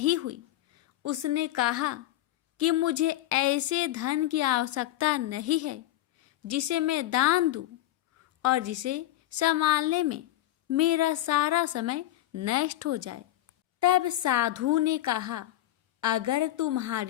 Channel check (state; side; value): quieter; right; 14.7 dB